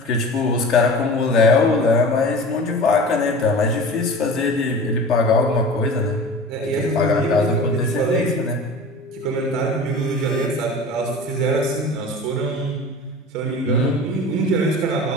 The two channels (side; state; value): both; normal; correlation 0.37